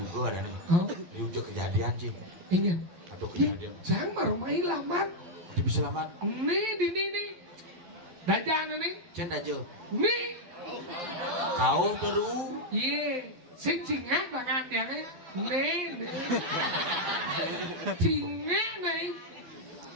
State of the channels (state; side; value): late; left; 11 ms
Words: ada nih. Oh. Ini udah kejadian sih. Ingin. Atau kejadian. Jangan baru main lamar. Dia bisa selamat. Nih di nih. Dajan nih. Cenda aja. Nih. Kau perlu. Iya. Sing cingat tangan dia nih. Nih. Cingat nih.